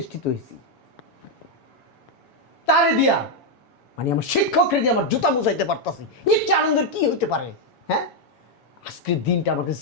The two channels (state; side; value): late; right; 7.1 ms